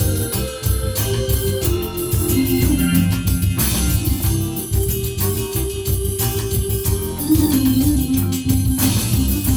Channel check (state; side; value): identical; both; correlation 1.00